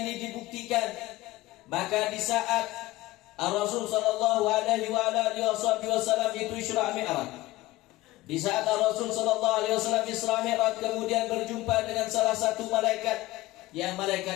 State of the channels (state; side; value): quieter; right; 18.2 dB